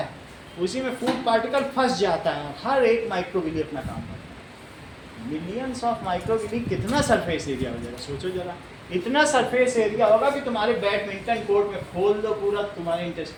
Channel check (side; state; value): both; identical; correlation 1.00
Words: उसी में फूड पार्टिकल फंस जाता है। हर एक माइक्रोविली अपना काम करता है। मिलियंस ऑफ माइक्रोविली, कितना सरफेस एरिया हो जाएगा सोचो जरा। इतना सरफेस एरिया होगा कि तुम्हारे बैडमिंटन कोर्ट में खोल दो पूरा, तुम्हारे